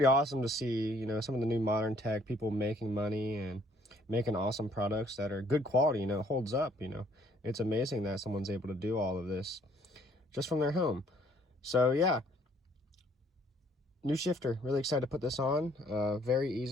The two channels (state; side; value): normal; both; correlation 0.63